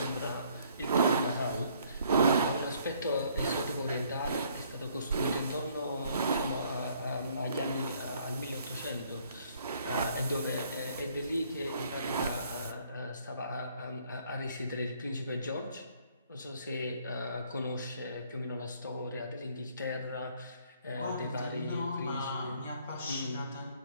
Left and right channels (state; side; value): inverted; both; correlation -0.63